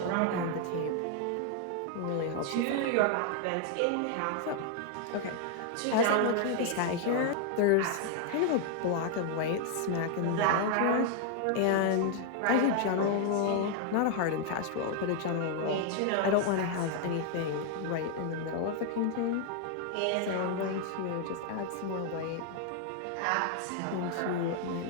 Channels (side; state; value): both; different; correlation 0.00